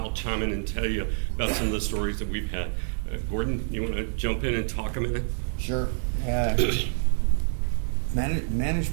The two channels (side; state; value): left; silent; digital silence